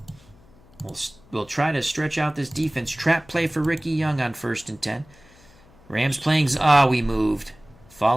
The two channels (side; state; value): left; noise; hum, 26 dB below the sound